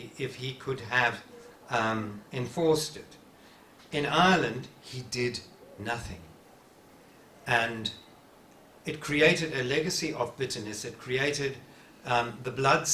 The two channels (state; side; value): identical; both; correlation 1.00